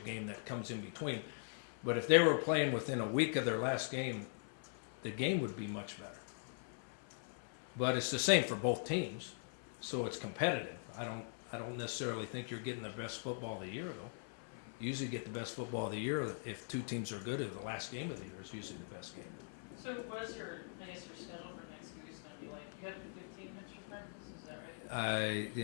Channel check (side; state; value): right; silent; 50 dB below the other